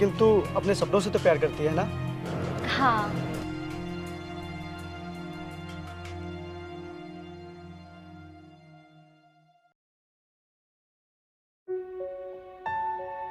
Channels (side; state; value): both; identical; correlation 1.00